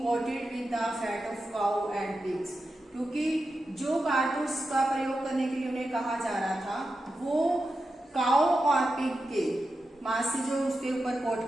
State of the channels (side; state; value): both; normal; correlation 0.90